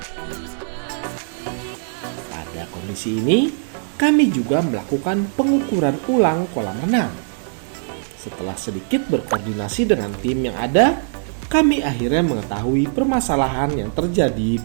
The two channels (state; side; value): silent; left; 65 dB below the other